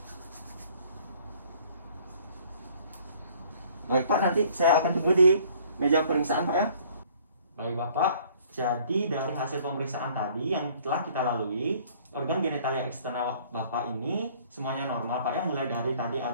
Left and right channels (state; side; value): inverted; both; correlation -0.56